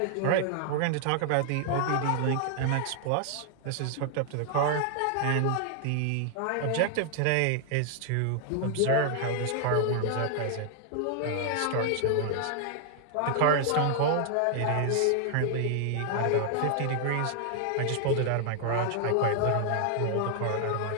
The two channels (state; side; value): different; both; correlation 0.00